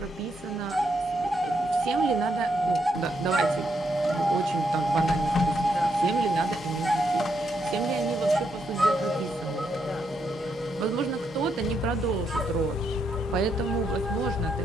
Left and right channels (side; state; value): both; normal; correlation 0.78